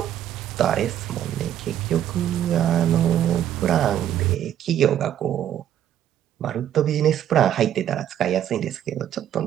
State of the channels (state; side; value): quieter; left; 10.8 dB